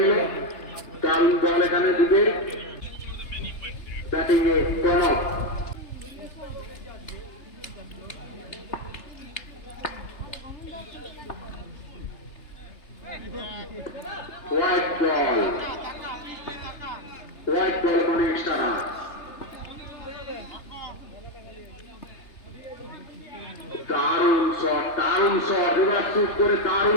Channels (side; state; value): right; late; 3.3 ms